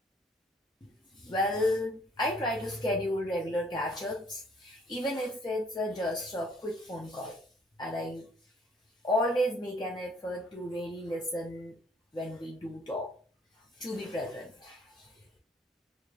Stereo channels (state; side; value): normal; both; correlation 0.61